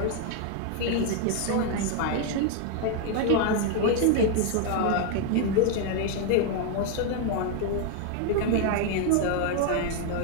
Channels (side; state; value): both; different; correlation 0.00